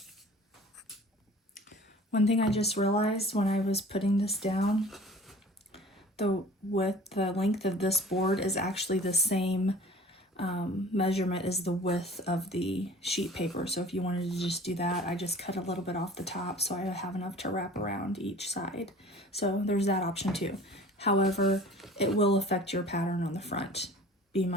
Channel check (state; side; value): normal; both; correlation 0.46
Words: One thing I just realized when I was putting this down, the length of this board is actually the same measurement as the width of the sheet paper. So if you wanted to just do that, I just cut a little bit off the top so I have enough to wrap around each side. So there's that option too. However, it will affect your pattern on the front. Be